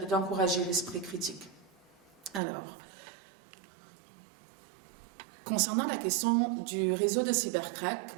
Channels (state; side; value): drops out; left; at 2.4 s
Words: l'esprit critique. Alors, concernant la question du réseau de cybercrack,